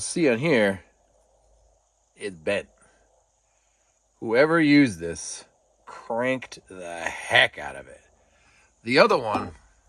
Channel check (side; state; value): both; identical; correlation 1.00